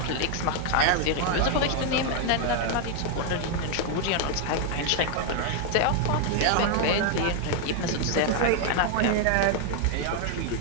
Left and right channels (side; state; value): both; different; correlation 0.00